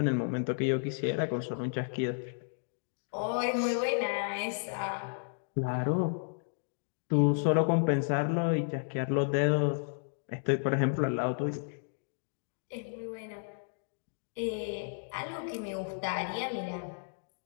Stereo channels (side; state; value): right; silent; digital silence